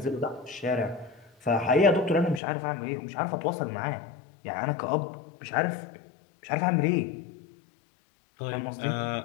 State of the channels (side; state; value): right; drops out; at 2.4 s